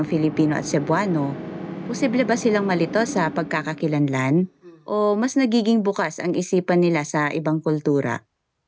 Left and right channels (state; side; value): identical; both; correlation 1.00